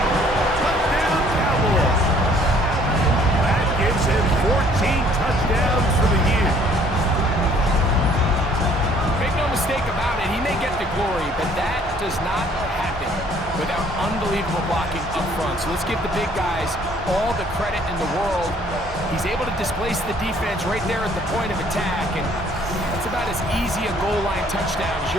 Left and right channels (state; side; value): normal; both; correlation 0.59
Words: Touchdown, Cowboys. That gives him 14 touchdowns for the year. Make no mistake about it, he may get the glory, but that does not happen without unbelievable blocking up front. So let's give the big guys all the credit in the world. He's able to displace the defense right there at the point of attack, and that's about as easy a goal line touchdown as